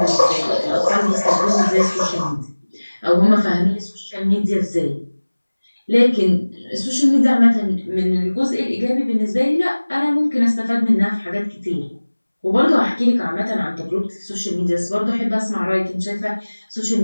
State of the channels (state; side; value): inverted; both; correlation -1.00